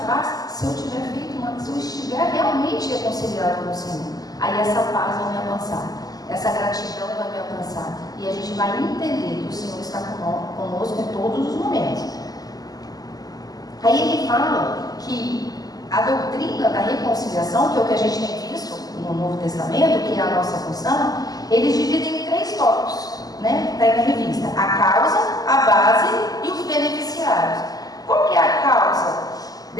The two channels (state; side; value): late; right; 0.18 ms